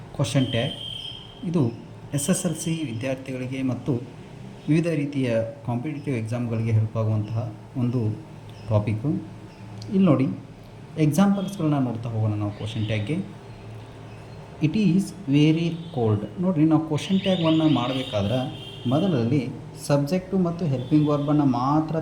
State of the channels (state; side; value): identical; both; correlation 1.00